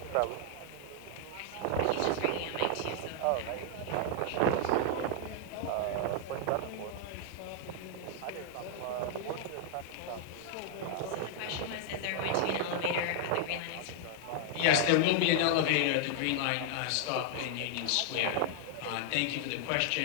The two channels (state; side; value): different; both; correlation 0.00